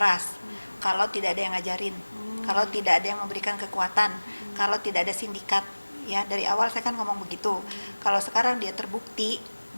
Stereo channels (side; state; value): both; inverted; correlation -1.00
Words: Kalau tidak ada yang ngajarin, kalau tidak ada yang memberikan kekuatan, kalau tidak ada sindikat. Ya, dari awal saya kan ngomong begitu. Kalau sekarang dia terbukti